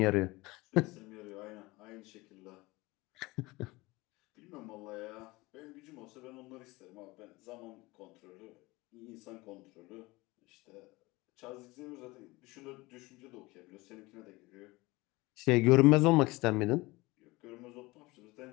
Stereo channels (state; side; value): quieter; right; 21.9 dB